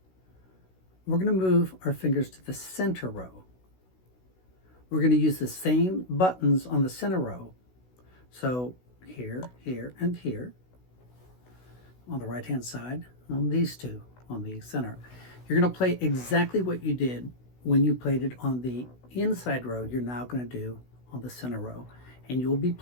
We're going to move our fingers to the center row. We're going to use the same buttons on the center row. So here, here, and here. On the right-hand side, on these two, on the center. You're going to play exactly what you did when you played it on the inside row. You're now going to do on the center row, and you'll be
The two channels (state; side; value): late; right; 16 ms